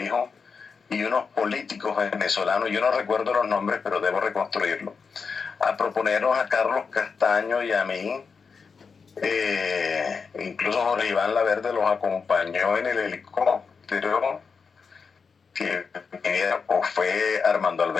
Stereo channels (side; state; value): right; quieter; 5.4 dB